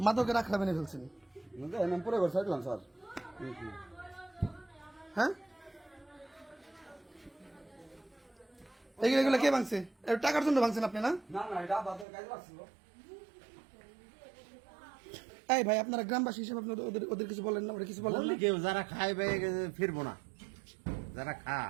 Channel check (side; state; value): left; drops out; at 12.1 s